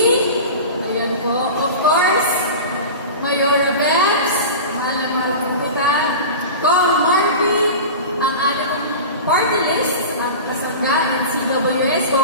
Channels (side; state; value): both; inverted; correlation -0.31